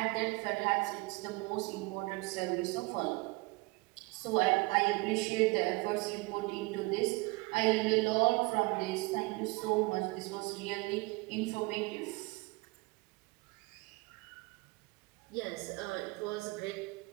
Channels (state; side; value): quieter; left; 24.4 dB